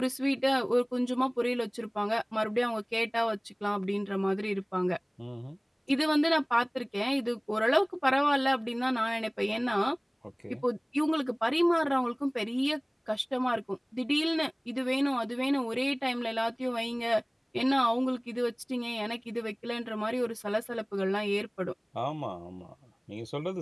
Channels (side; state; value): both; identical; correlation 1.00